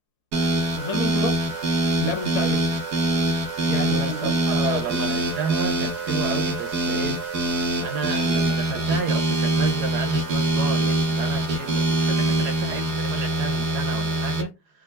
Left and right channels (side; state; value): left; late; 4.8 ms